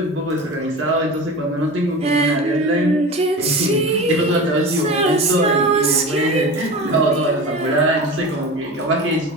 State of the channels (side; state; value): both; normal; correlation 0.31